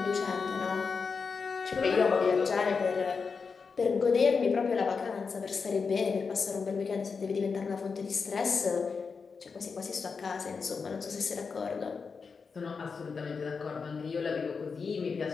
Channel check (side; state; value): right; quieter; 5.2 dB